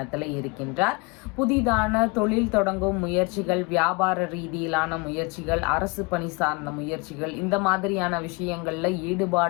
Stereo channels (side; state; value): right; quieter; 28.7 dB